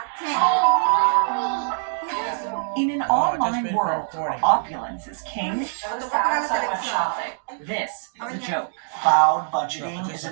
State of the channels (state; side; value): silent; left; digital silence